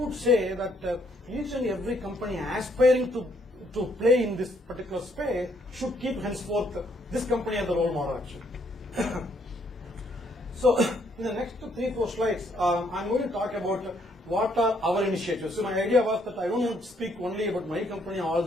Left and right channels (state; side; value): normal; both; correlation 0.70